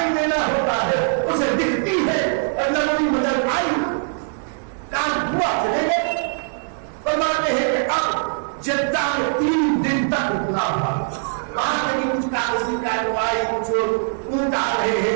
دینا ہوتا ہے اسے دکھتی ہے. اور نبوی مدد آئی، کام ہوا، چلے گئے. فرماتے ہیں کہ اب جدہ میں 3 دن تک رکنا ہوا. وہاں کہیں کچھ کاغذی کارروائی، کچھ اونٹ آ رہے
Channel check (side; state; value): left; silent; 65 dB below the other